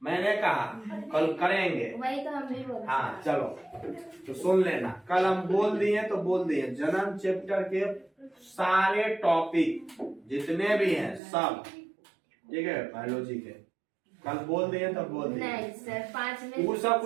मैंने कहा कल करेंगे, वही तो हम भी बोल। हाँ चलो तो सुन लेना। कल हम बोल दिए तो बोल दिए जनन चैप्टर के सारे टॉपिक जितने भी हैं सब, ठीक है, बायोलॉजी के कल बोल दिए तो बोल दिए। नहीं सर 5 में वो सब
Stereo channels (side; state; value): left; drops out; at 11.2 s